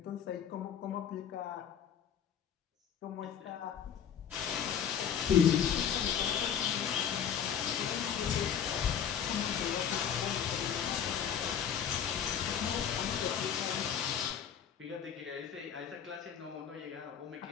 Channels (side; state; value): right; quieter; 8.4 dB